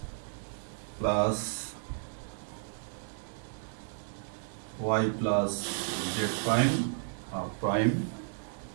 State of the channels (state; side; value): silent; left; digital silence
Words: plus y plus z prime prime